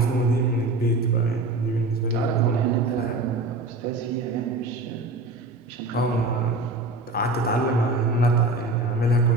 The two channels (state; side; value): quieter; left; 3.0 dB